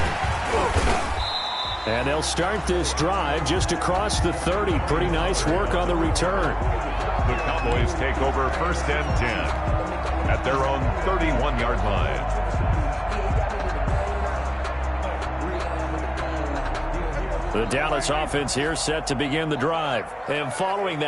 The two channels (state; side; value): identical; both; correlation 1.00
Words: And they'll start this drive just across the 30. Pretty nice work on the return. The Cowboys take over 1st and 10 at their own 31-yard line. The Dallas offense here set to begin the drive. And following